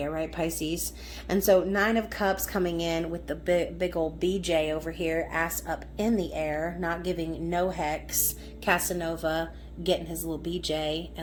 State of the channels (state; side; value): identical; both; correlation 1.00